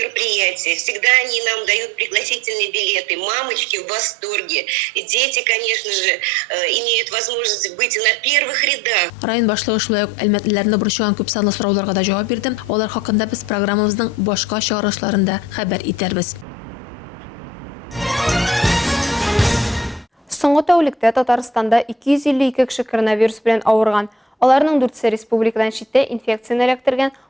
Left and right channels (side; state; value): both; normal; correlation 0.52